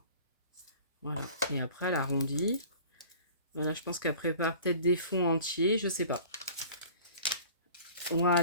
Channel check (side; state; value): both; inverted; correlation -0.45